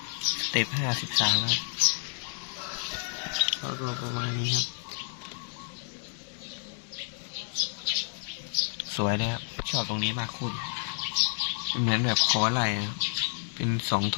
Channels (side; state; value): right; silent; 58 dB below the other